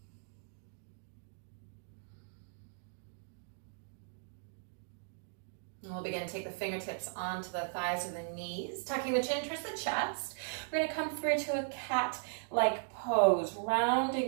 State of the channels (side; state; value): left; silent; digital silence